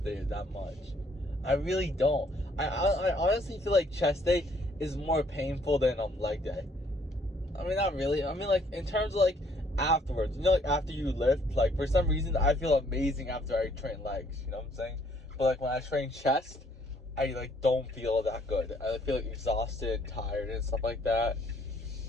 days that much. I really don't. I honestly feel like chest day is more painful than leg day. I mean, not really. I mean, like, in terms of, like, afterwards. You know, like, after you lift, like, for some reason, I feel amazing after I train legs. You know what I'm saying? But, like, when I train chest, I, like, don't feel that good. I feel, like, exhausted, tired, and stuff like that.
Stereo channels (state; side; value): normal; both; correlation 0.64